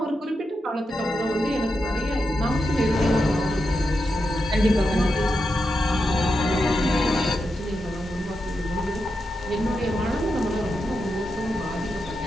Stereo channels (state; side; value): normal; both; correlation 0.87